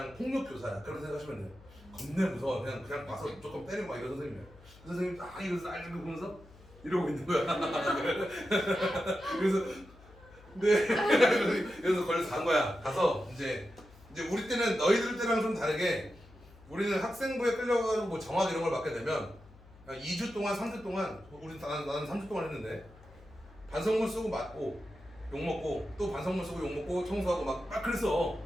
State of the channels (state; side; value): noise; left; hum, 23 dB below the sound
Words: 폭력교사야. 그렇게 생각하시면 돼요. 겁내 무서워. 그냥 와서 조금 때리고 막 이런 선생님이야. 그 선생님이 딱 이러면서 날 들고 보면서 이러고 있는 거야. 그래서 네. 그래서 걸려서 간 거야. 가서 이제 이제 우리 때는 너희들 때랑 좀 다르게 우리는 학생부에 끌려가지고 뭐 정학 이런 걸 맡게 되면 2주 동안 3주 동안 나는 3주 동안 했는데 반성문 쓰고 맞고 욕 먹고 또 반성문 쓰고 욕 먹고 청소하고 막 그랬어.